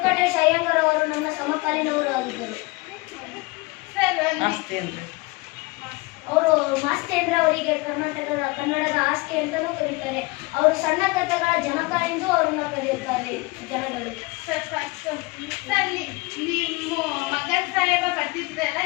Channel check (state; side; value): quieter; right; 24.5 dB